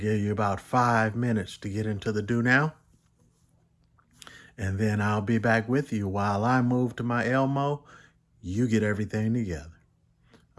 you about 5 minutes to get into the do now, and then I'll be back with you while I move to my Elmo. You get everything together.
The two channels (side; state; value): both; identical; correlation 1.00